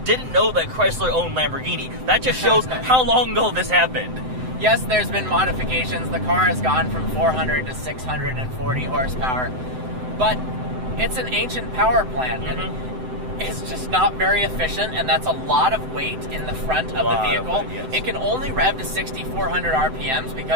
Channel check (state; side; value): late; left; 7.8 ms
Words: didn't know that Chrysler owned Lamborghini. That just shows how long ago this happened. Yes, there's been modifications. The car has gone from 400 to 640 horsepower, but it's an ancient power plant, and it's just not very efficient, and that's a lot of weight in the front of the vehicle. It can only rev to 6,400 RPMs